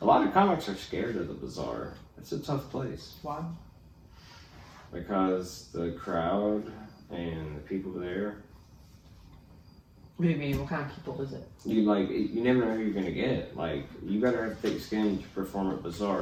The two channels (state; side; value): identical; both; correlation 1.00